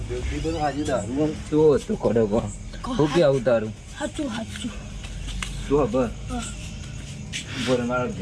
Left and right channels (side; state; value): both; identical; correlation 1.00